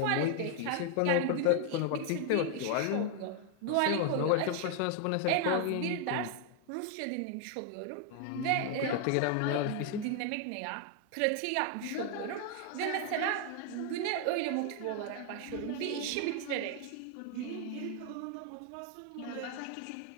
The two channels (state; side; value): different; both; correlation 0.00